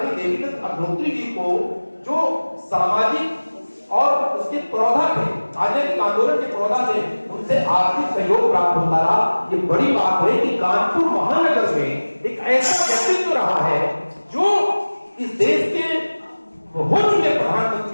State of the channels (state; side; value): inverted; both; correlation -1.00